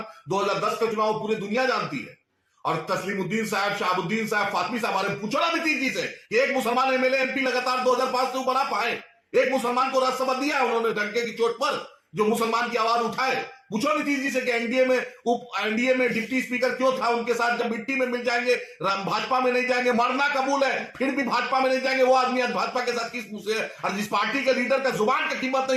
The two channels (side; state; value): both; identical; correlation 1.00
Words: 2010 का चुनाव पूरी दुनिया जानती है। और तस्लीमुद्दीन साहब, शहाबुद्दीन साहब, फातमी साहब, बारे में पूछो ना नीतीश जी से कि एक मुसलमान एमएलए एमपी लगातार 2005 से ऊपर आ पाए। एक मुसलमान को राज्यसभा दिया उन्होंने डंके की चोट पर, जो मुसलमान की आवाज उठाए। पूछो नीतीश जी से कि एनडीए में डिप्टी स्पीकर क्यों था उनके साथ, जब मिट्टी में मिल जाएंगे, भाजपा में नहीं जाएंगे, मरना कबूल है, फिर भी भाजपा में नहीं जाएंगे। वो आदमी आज भाजपा के साथ किस मुंह से है। और जिस पार्टी के लीडर का जुबान का कीमत